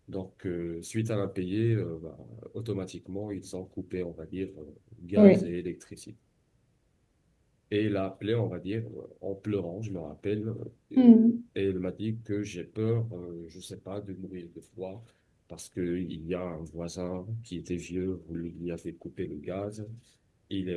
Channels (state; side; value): identical; both; correlation 1.00